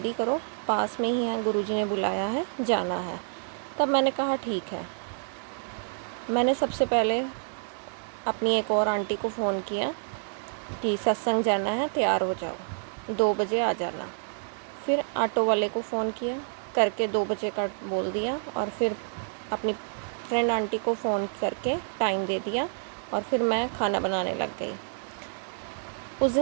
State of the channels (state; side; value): silent; left; 59 dB below the other